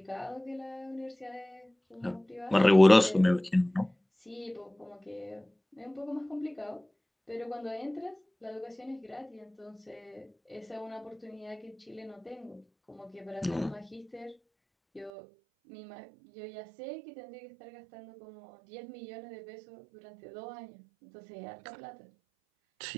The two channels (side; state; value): left; drops out; at 15.1 s